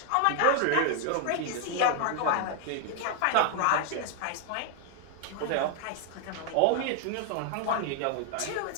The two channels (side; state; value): both; different; correlation 0.00